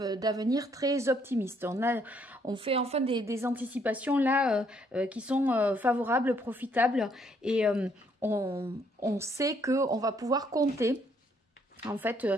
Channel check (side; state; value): both; normal; correlation 0.68